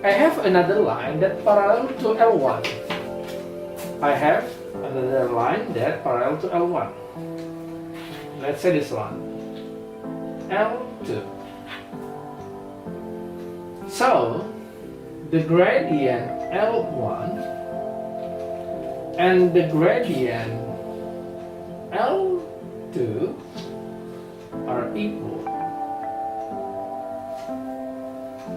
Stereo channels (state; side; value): identical; both; correlation 1.00